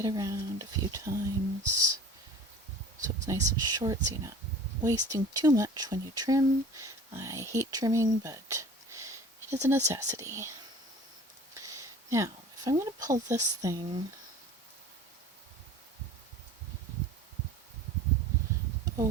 around a few times so it's nice and short so you're not wasting too much when you trim. I hate trimming, but it is a necessity. Now, if I'm going to pull this thing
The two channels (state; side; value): normal; both; correlation 0.43